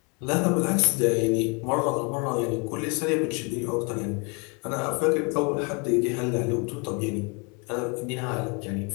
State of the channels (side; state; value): right; quieter; 31.7 dB